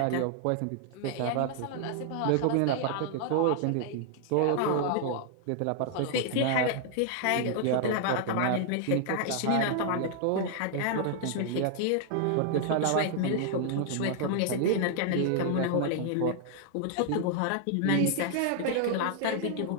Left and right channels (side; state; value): both; different; correlation 0.00